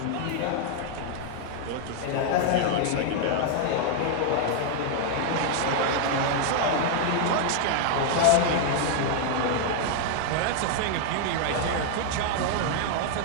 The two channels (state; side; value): different; both; correlation 0.00